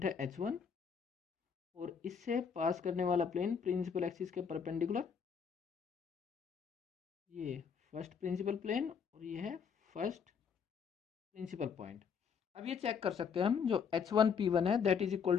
है H1, और इससे पास करने वाला प्लेन प्रिंसिपल एक्सिस के परपेंडिकुलर, ये फर्स्ट प्रिंसिपल प्लेन और ये है फर्स्ट प्रिंसिपल पॉइंट। अब ये चेक कर सकते हैं हम, जो H1P1 है that is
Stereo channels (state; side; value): quieter; right; 6.6 dB